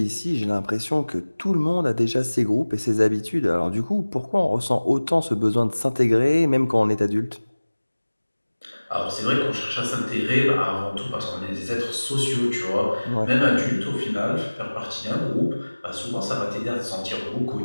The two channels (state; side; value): inverted; both; correlation -1.00